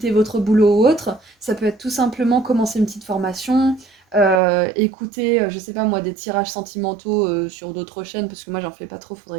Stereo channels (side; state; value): left; drops out; at 4.4 s